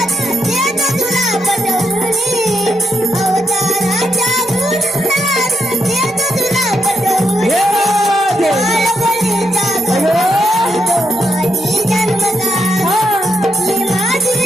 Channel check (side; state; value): both; normal; correlation 0.79